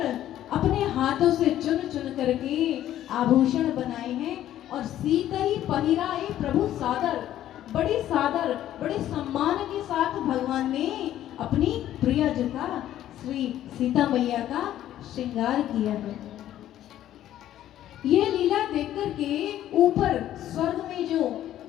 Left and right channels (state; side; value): quieter; right; 12.4 dB